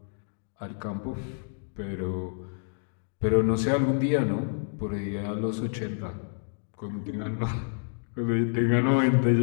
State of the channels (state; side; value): silent; right; 59 dB below the other